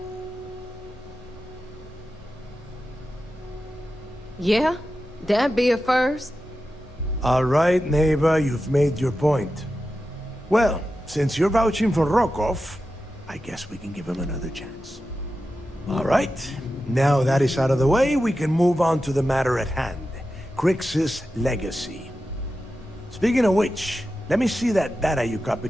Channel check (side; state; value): both; normal; correlation 0.91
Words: Yeah, that'd be a first. All right, neighbor, you've made your point. Well, since you're vouching for Rokov, I guess we can give him another chance. All right, now that is out of the way, we can move on to the matter at hand. Crix's legacy. Speaking of which, let me see that data you